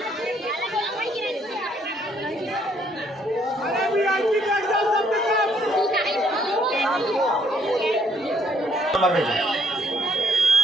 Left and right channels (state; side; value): normal; both; correlation 0.66